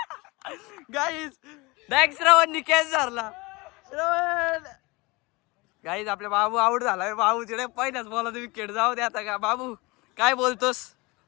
गाईज डायरेक्ट श्रवणनी कॅच धरला. श्रवण गाईज आपल्या बाबू आउट झालाय. बाबू तिकडे पहिल्याच बॉलला विकेट. जाऊ दे आता. का बाबू काय बोलतोस?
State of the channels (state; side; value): quieter; right; 24.6 dB